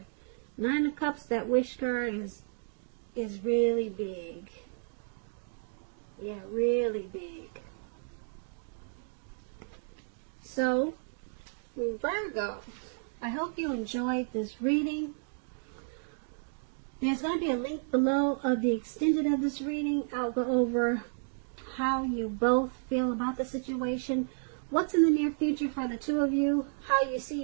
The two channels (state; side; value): silent; left; digital silence